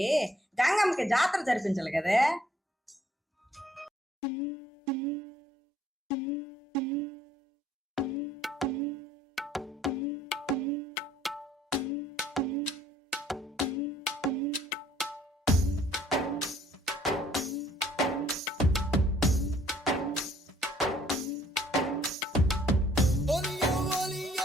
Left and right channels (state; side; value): normal; both; correlation 0.62